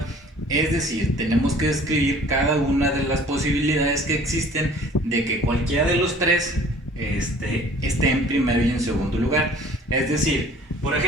Es decir, tenemos que describir cada una de las posibilidades que existen de que cualquiera de los tres esté en primero y en segundo lugar. Es decir, por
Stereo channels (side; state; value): both; normal; correlation 0.51